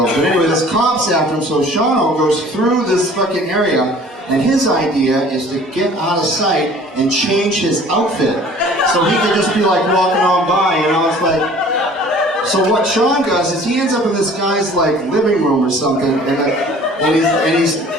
But anyway, this cop's after him, so Shawno goes through this fucking area, and his idea is to get out of sight and change his outfit. So he could just be like walking on by, it's like... So what Sean does is he ends up in this guy's like living room or something, and he's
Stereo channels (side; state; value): both; normal; correlation 0.50